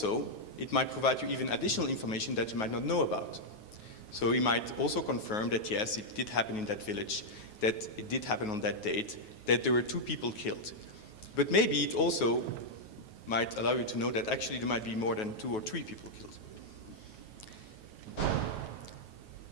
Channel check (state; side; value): late; right; 9.4 ms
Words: it might provide you even additional information that you might not know about. So you might also confirm that, yes, it did happen in that village, that it did happen on that date, that there were 2 people killed. But maybe it also might allow you to know that actually there might be more than 2 or 3 people killed.